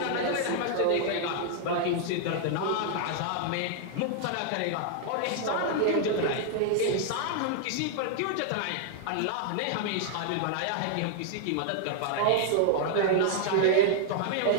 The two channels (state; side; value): different; both; correlation -0.01